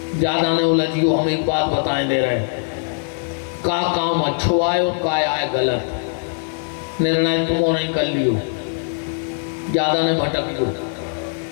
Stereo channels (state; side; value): silent; right; 59 dB below the other